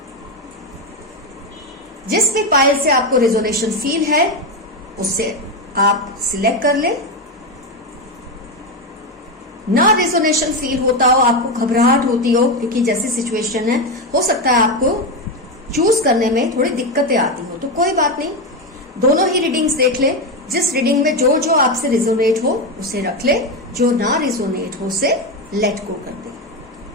जिस भी पाइल से आपको रेजोनेशन फील है उससे आप सिलेक्ट कर ले। ना रेजोनेशन फील होता हो, आपको घबराहट होती हो क्योंकि जैसी सिचुएशन है, हो सकता है आपको चूज करने में थोड़ी दिक्कतें आती हो, तो कोई बात नहीं, दोनों ही रीडिंग्स देख ले। जिस रीडिंग में जो जो आपसे रिजोनेट हो उसे रख ले, जो ना रिजोनेट हो उसे लेट गो कर दे।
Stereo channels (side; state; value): both; normal; correlation 0.12